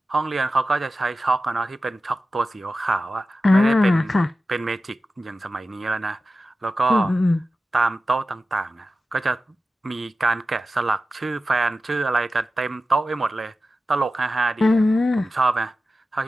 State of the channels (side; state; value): both; normal; correlation 0.93